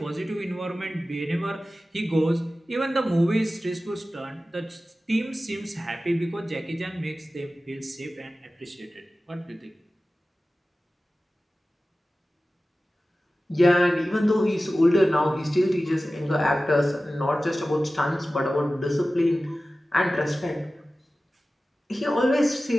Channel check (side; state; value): both; normal; correlation 0.96